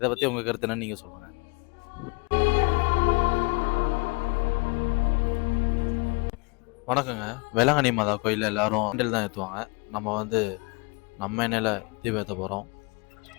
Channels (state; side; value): quieter; right; 28.6 dB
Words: பற்றி உங்கள் கருத்து என்னன்னு நீங்கள் சொல்லுங்கள். வணக்கங்க. வேளாங்கண்ணி மாதா கோயிலில் எல்லாரும் ஹேண்டில் தான் ஏற்றுவாங்க. நம்ம வந்து நம்ம எண்ணெயில் தீபம் ஏற்ற போகிறோம்.